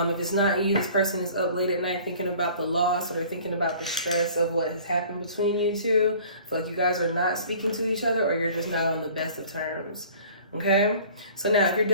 it's not you, this person is up late at night thinking about the loss, or they're thinking about the stress of what has happened between you two. I feel like you guys are not speaking to each other, or you're just not on the best of terms. Okay? So now, if you're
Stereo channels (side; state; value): both; inverted; correlation -0.49